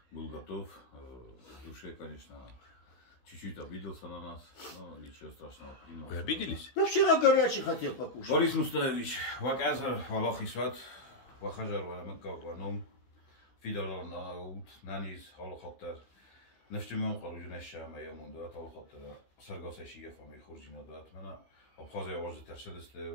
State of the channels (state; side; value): late; right; 16 ms